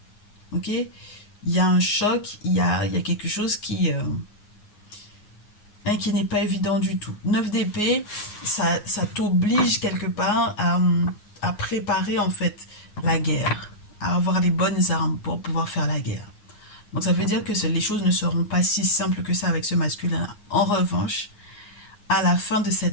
Ok? Il y a un choc, il y a quelque chose qui n'est pas évident du tout. 9 d'épée, ça t'oblige quelque part à préparer en fait la guerre, à avoir les bonnes armes pour pouvoir faire la guerre. Donc ça veut dire que les choses ne seront pas si simples que ça avec ce masculin. En revanche, à la fin de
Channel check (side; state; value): right; late; 9.6 ms